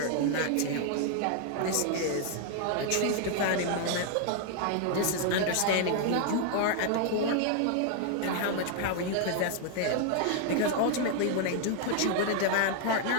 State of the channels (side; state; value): both; different; correlation 0.00